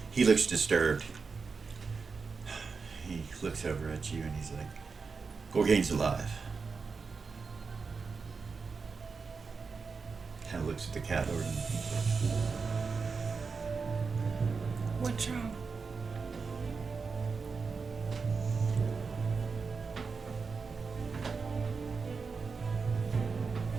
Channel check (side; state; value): left; quieter; 4.9 dB